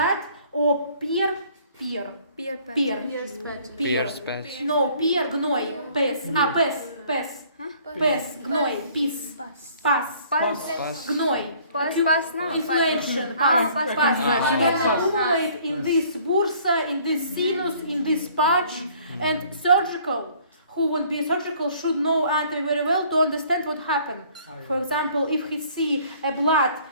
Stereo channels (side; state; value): both; inverted; correlation -0.57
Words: or peer, no, peer, gnoi, pes, gnoi, pis, pas, gnoi, inflation, accumulate in this bursa, in this sinus, in this pouch, and surgical. Who won't be surgical should know anatomy very well to understand what happened. For example, if he see a blood